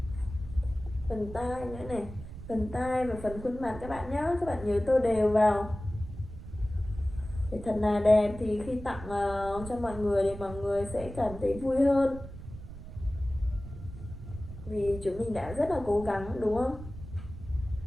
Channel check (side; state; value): right; noise; rumble, 12 dB below the sound